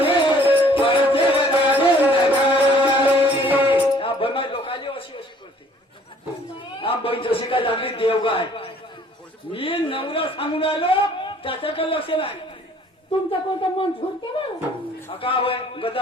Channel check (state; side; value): normal; both; correlation 0.57